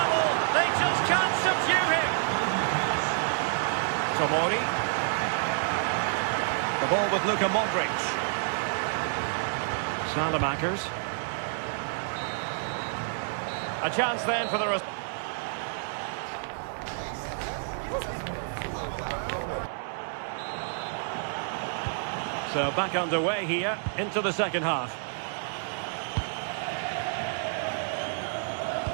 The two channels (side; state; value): left; silent; 59 dB below the other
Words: They just can't subdue him! Tomori. The ball with Luka Modric. Salamakers. A chance then for the... So back underway here into the second half.